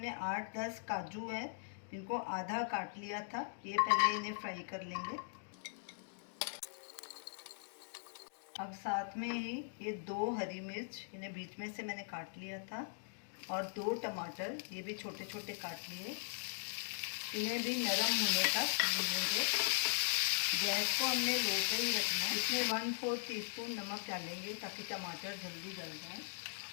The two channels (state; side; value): silent; right; digital silence